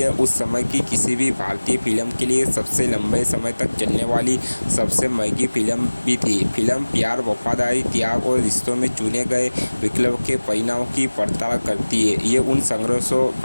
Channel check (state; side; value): inverted; both; correlation -1.00